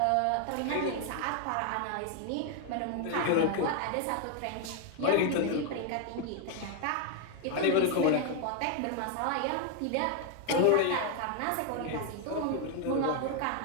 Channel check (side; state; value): both; different; correlation 0.01